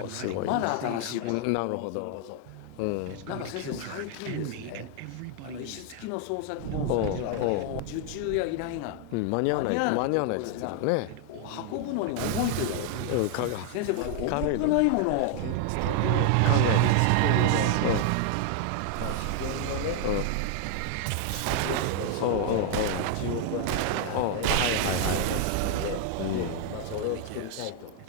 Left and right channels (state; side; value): different; both; correlation 0.00